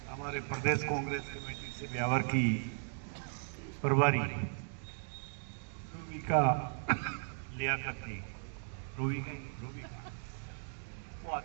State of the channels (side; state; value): left; silent; digital silence